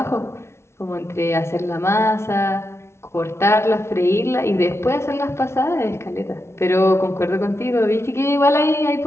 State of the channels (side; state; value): right; late; 0.13 ms